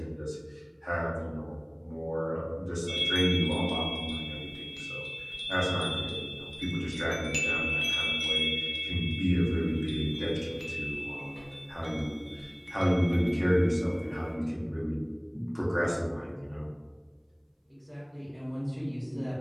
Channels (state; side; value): identical; both; correlation 1.00